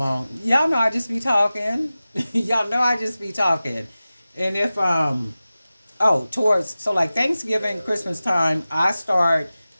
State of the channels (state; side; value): inverted; both; correlation -0.96